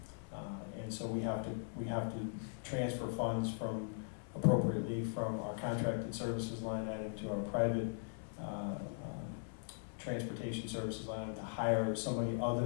and so we have to transfer funds appropriately from our contracted services line item to our private transportation services line item to hire somebody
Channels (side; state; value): right; silent; 51 dB below the other